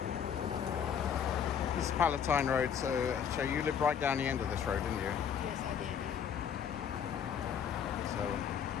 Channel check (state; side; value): quieter; right; 8.0 dB